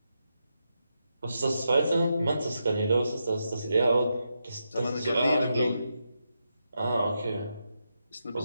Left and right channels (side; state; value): both; inverted; correlation -0.85